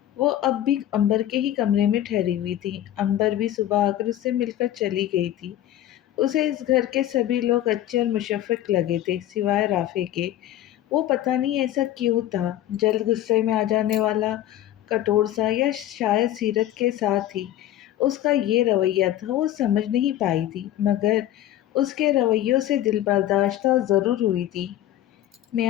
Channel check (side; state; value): right; quieter; 12.8 dB